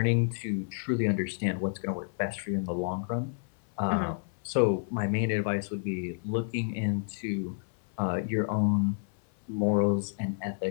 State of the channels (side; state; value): right; silent; 58 dB below the other